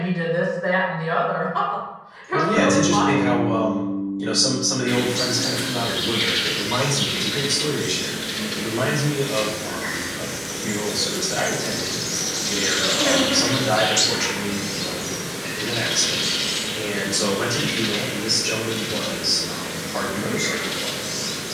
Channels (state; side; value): identical; both; correlation 1.00